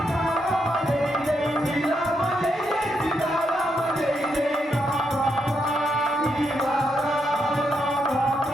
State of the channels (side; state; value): both; normal; correlation 0.80